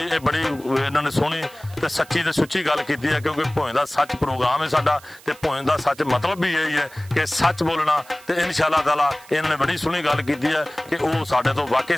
ਇਹ ਬੜੀ ਇਹਨਾਂ ਨੇ ਸੋਹਣੀ ਤੇ ਸੱਚੀ ਤੇ ਸੁੱਚੀ ਗੱਲ ਕੀਤੀ ਹੈ, ਕਿਉਂਕਿ ਭੋਏ ਦਾ ਸੱਚ ਪ੍ਰੋਗਰਾਮ ਹੈ ਸਾਡਾ, ਤੇ ਭੋਏ ਦਾ ਸੱਚ ਮਤਲਬ ਵੀ ਇਹੀ ਹੈ ਕਿ ਸੱਚ ਬੋਲਣਾ। ਤੇ ਇਨਸ਼ਾਅੱਲਾ ਤਾਲਾ ਇਹਨਾਂ ਨੇ ਬੜੀ ਸੋਹਣੀ ਗੱਲ ਕੀਤੀ ਹੈ ਕਿ ਉਹ ਸਾਡੇ ਤੋਂ ਵਾਕਈ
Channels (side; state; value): right; noise; hiss, 23 dB below the sound